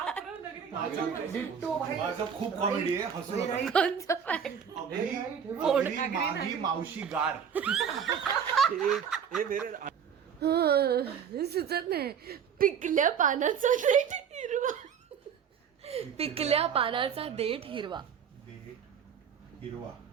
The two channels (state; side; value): quieter; left; 7.6 dB